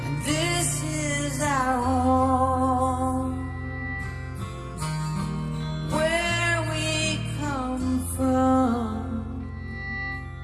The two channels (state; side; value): identical; both; correlation 1.00